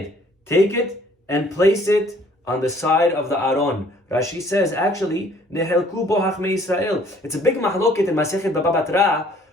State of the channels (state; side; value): normal; both; correlation 0.58